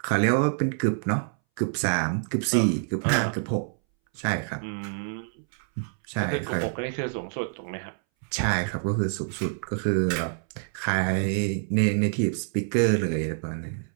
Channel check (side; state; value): left; silent; 60 dB below the other